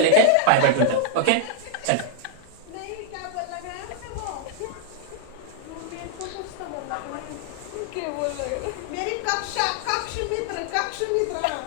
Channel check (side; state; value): both; different; correlation -0.01